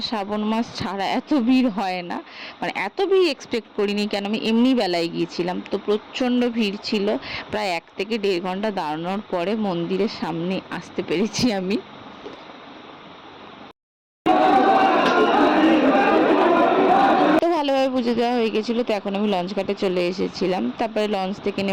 শ্রাবণ মাস ছাড়া এত ভিড় হয় না। মানে এত ভিড় এক্সপেক্ট করিনি, কেন আমি এমনি বেলায় গিয়েছিলাম। তো প্রচণ্ড ভিড় ছিল। প্রায় 1 থেকে 1.5 ঘন্টা দাঁড়ানোর পরে মন্দিরের সামনে আসতে পেরেছি আমি। তো ভালোভাবে পুজো দেওয়া হয়ে গেছিলো। তো এখন আমি লঞ্চ ঘাটে চলে এসেছিলাম। তারপরে লঞ্চ থেকে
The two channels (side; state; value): both; identical; correlation 1.00